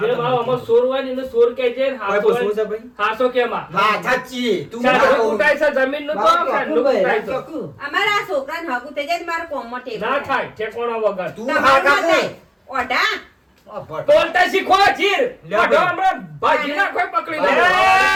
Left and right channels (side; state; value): both; identical; correlation 1.00